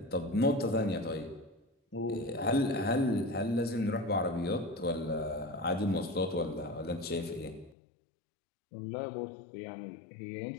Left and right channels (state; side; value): drops out; right; at 7.8 s